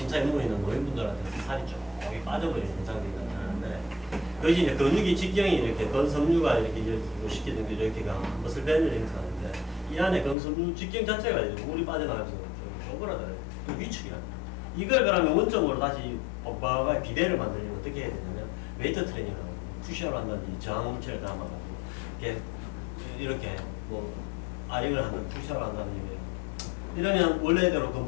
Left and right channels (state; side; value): drops out; right; at 10.4 s